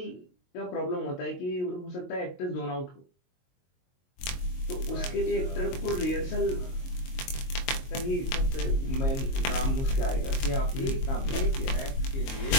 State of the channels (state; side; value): late; right; 22 ms